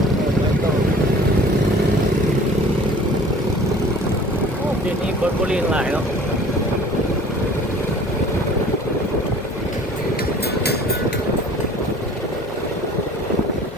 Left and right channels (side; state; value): both; normal; correlation 0.48